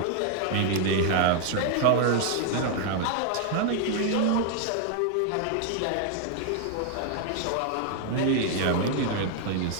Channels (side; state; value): both; different; correlation 0.00